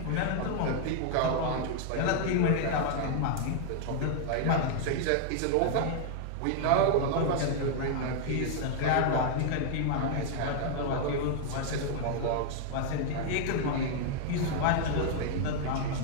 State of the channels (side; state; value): both; different; correlation 0.00